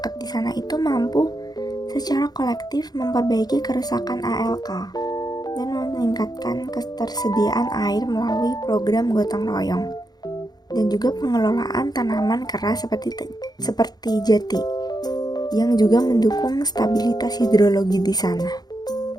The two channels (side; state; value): right; late; 0.19 ms